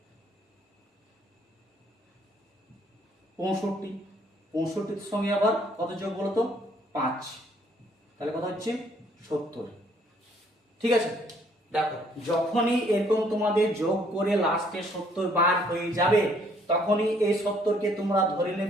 65, 65-এর সঙ্গে আবার কত যোগ বলো তো 5, তাহলে কত হচ্ছে 70, ঠিক আছে? দেখো যখনই এরকম তোমাদের যোগ করে লাস্টে 70 বার হয়ে যাবে, তখনই এই 70-কে তোমরা ধরে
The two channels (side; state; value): both; normal; correlation 0.64